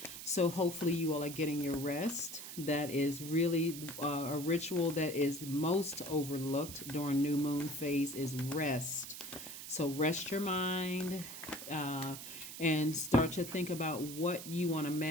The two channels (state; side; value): noise; right; hiss, 10 dB below the sound